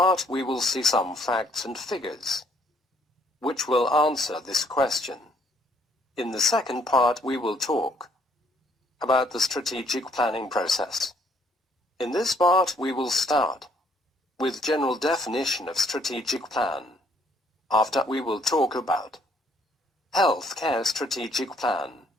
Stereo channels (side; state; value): both; normal; correlation 0.65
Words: we will see some facts and figures which will answer this question. In the second part, we will talk about the strategic planning process. In this part, we will start with general definition of strategic plan. After, we will talk about healthcare strategic plan